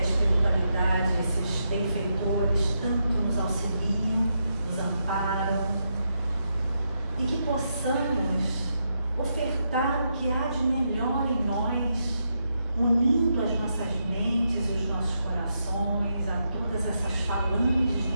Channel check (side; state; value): both; inverted; correlation -0.82